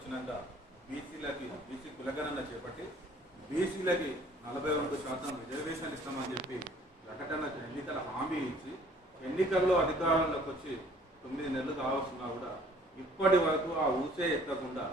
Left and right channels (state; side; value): normal; both; correlation 0.55